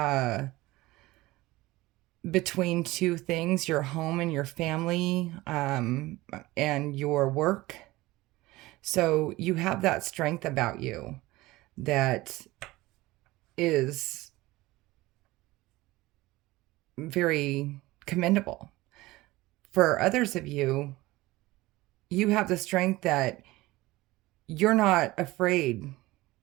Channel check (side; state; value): left; quieter; 19.3 dB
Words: between two things, your home and your family, and your work. So you have that strength about you that is very commendable. For others of you, you have the strength that you're not afraid